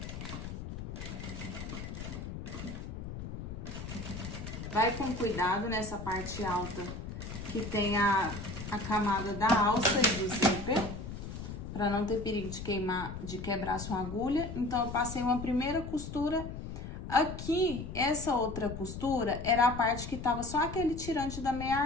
Vai com cuidado nessa parte alta que tem a camada da alça e do zíper, para não ter perigo de quebrar a sua agulha. Então, eu passei uma primeira costura. Aqui, essa outra costura era a parte que tava só aquele tirante da meia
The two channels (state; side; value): noise; left; rumble, 8 dB below the sound